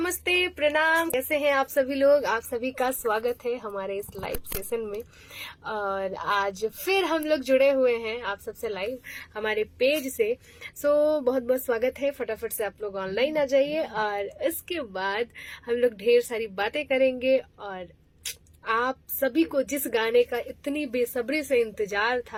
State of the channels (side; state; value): both; identical; correlation 1.00